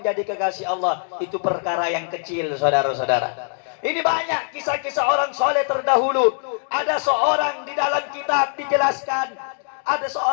kekasih Allah, itu perkara yang kecil, saudara-saudara. Ini banyak kisah-kisah orang soleh terdahulu. Ada seorang di dalam kitab dijelaskan, ada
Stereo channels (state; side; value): silent; right; 56 dB below the other